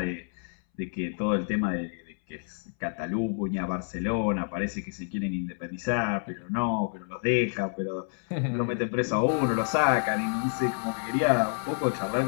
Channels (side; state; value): right; silent; 59 dB below the other